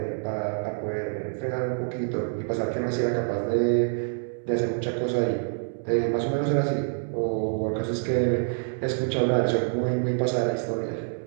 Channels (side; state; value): left; silent; digital silence